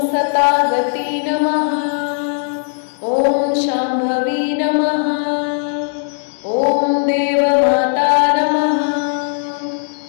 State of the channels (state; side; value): silent; right; digital silence